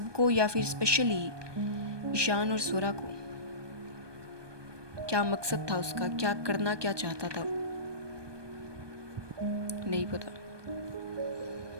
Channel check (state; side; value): late; left; 1.2 ms